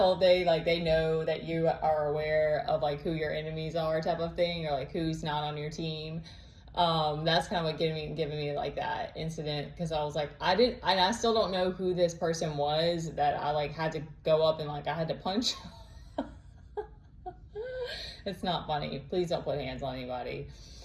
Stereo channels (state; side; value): identical; both; correlation 1.00